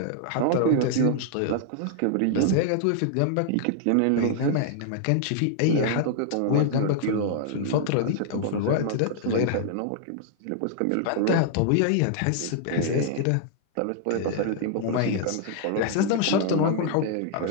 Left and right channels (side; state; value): both; different; correlation -0.01